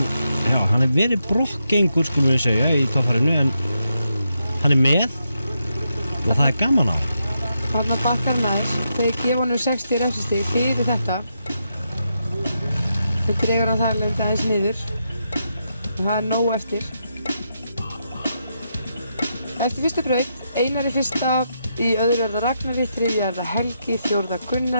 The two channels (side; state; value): both; inverted; correlation -0.83